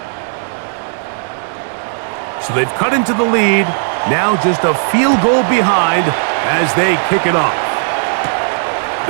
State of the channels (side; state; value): left; silent; digital silence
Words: So they've cut into the lead. Now just a field goal behind as they kick it off.